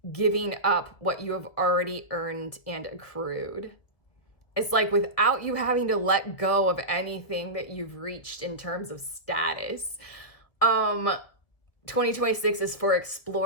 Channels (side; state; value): right; late; 1.9 ms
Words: giving up what you have already earned and accrued. It's like without you having to let go of anything that you've reached in terms of status. 2026 is for